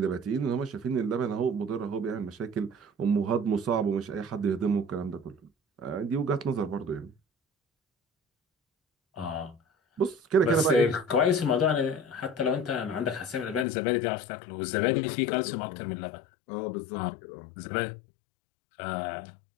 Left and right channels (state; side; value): drops out; right; at 13.7 s